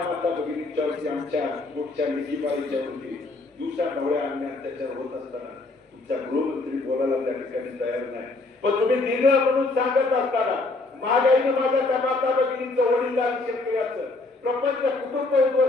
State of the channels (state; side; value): quieter; right; 3.3 dB